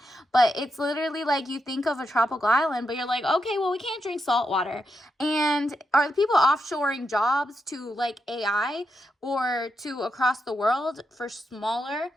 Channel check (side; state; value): both; normal; correlation 0.84